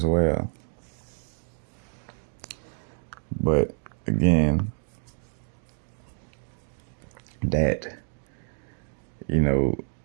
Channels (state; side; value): silent; left; 57 dB below the other